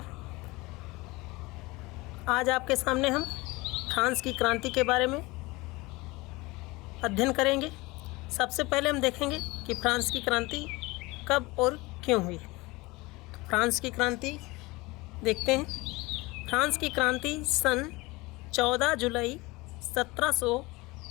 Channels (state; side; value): quieter; right; 22.7 dB